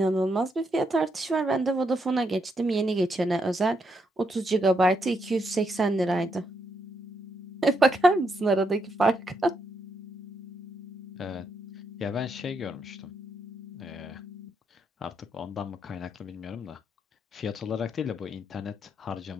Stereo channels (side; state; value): both; normal; correlation 0.78